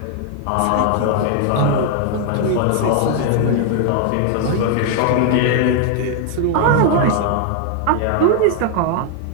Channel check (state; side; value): different; both; correlation 0.00